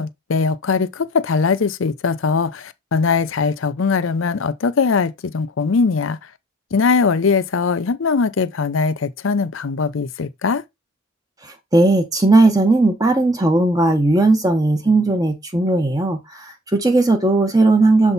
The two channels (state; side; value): normal; both; correlation 0.53